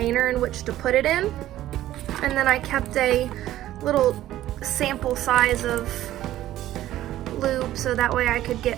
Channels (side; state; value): left; quieter; 13.9 dB